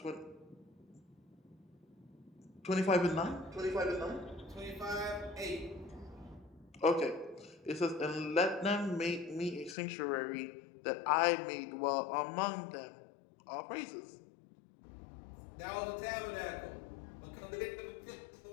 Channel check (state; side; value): drops out; right; at 9.8 s